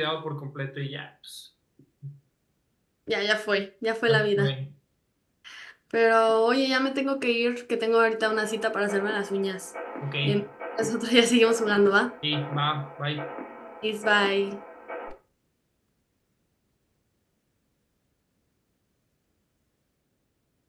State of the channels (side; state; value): both; identical; correlation 1.00